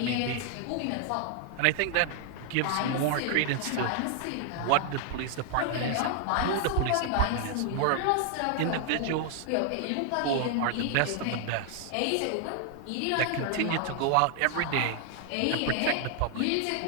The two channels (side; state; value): both; different; correlation 0.00